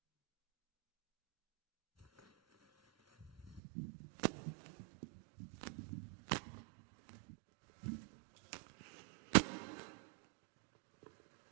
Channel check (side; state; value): left; drops out; at 3.6 s